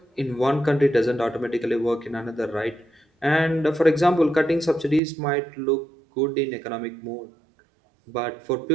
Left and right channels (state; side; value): drops out; left; at 5.0 s